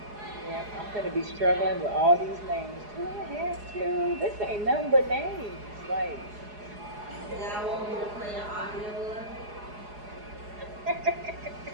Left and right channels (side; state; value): left; late; 4.8 ms